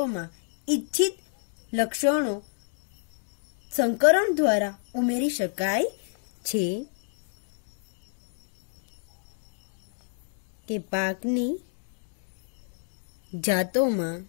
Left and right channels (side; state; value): right; silent; 59 dB below the other